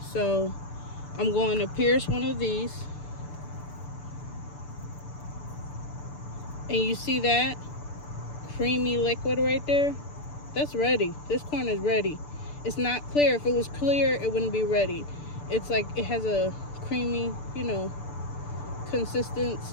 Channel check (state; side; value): late; right; 6.9 ms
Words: So I'm going to pierce one of these. And you see that creamy liquid right there? That's ready. This corn is ready. It's not clear. If it was clear, it wouldn't be ready. It's like it has a creamy,